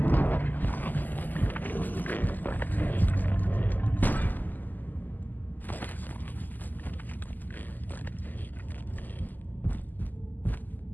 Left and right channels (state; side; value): late; right; 0.085 ms